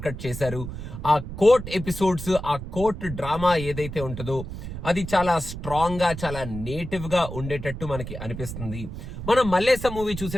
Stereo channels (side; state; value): right; noise; rumble, 9 dB below the sound